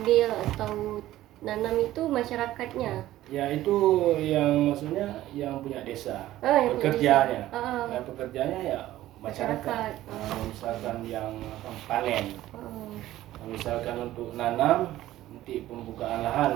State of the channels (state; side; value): quieter; left; 14.7 dB